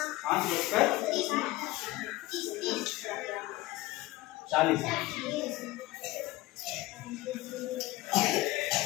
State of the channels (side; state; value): right; quieter; 18.6 dB